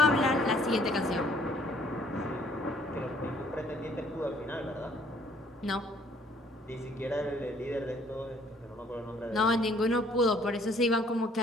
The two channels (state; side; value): normal; both; correlation 0.60